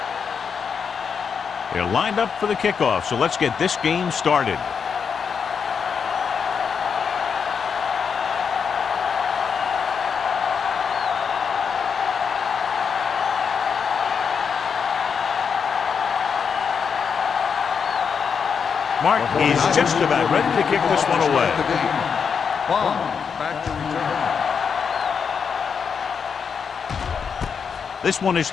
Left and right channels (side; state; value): right; quieter; 6.4 dB